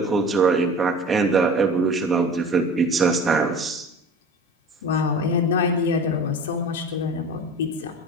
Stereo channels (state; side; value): normal; both; correlation 0.38